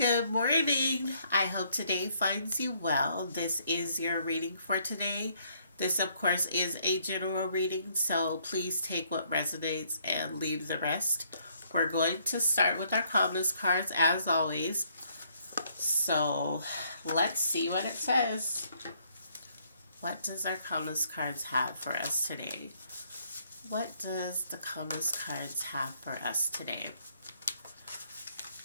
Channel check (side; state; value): both; inverted; correlation -0.68